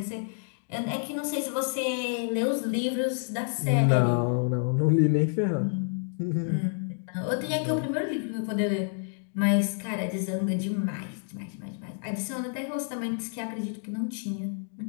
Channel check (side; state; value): right; silent; 59 dB below the other